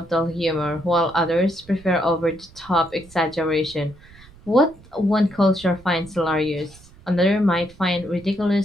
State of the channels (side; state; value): right; noise; rumble, 24 dB below the sound